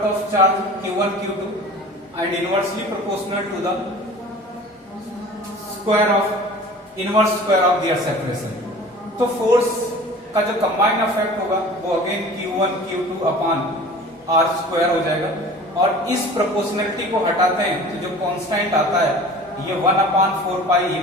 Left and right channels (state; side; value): normal; both; correlation 0.42